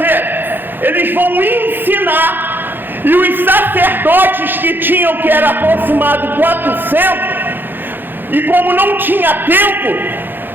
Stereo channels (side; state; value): left; late; 0.096 ms